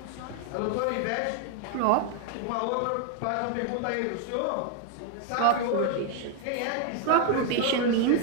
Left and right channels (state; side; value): different; both; correlation 0.00